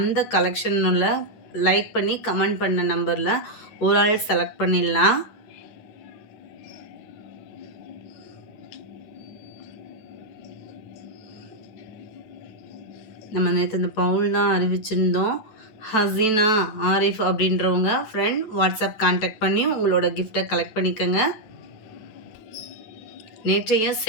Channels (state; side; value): late; right; 9.5 ms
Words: கலெக்ஷனில் லைக் பண்ணி கமெண்ட் பண்ண நம்பரில் ஒரு ஆள் செலக்ட் பண்ணிடலாம். நம்ம நேற்று இந்த பவுல் தான் அறிவிச்சிருந்தோம். ஹசீனா ஆரிஃப் அப்படின்றவங்க ஃப்ரெண்ட் வாட்ஸ்அப் கான்டாக்ட் பண்ணி உங்களோட கிஃப்டை கலெக்ட் பண்ணிக்கோங்க. நேற்றைய